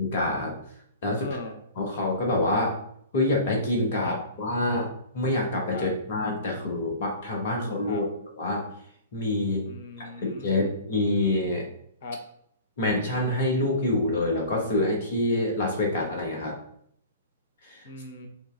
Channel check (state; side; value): inverted; both; correlation -0.40